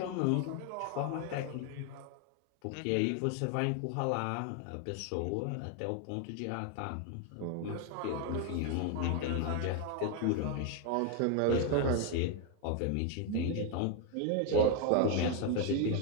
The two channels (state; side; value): different; both; correlation 0.01